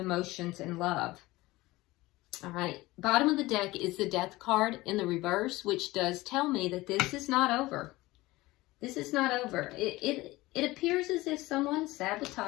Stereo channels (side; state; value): right; quieter; 19.5 dB